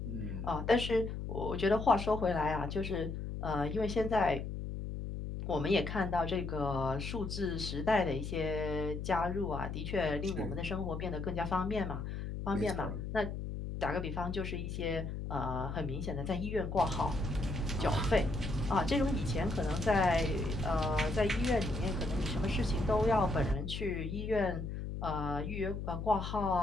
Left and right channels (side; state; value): left; noise; hum, 5 dB below the sound